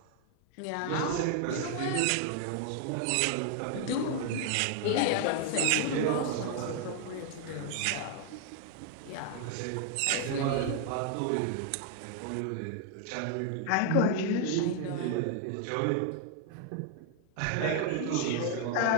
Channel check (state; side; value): different; both; correlation 0.00